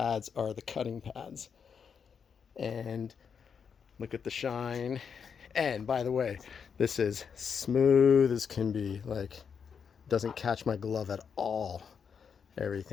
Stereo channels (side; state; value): right; quieter; 6.7 dB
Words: are the cutting pads. And look at the shine. And by the way, this is smooth as can be. Like, doesn't catch my glove at all.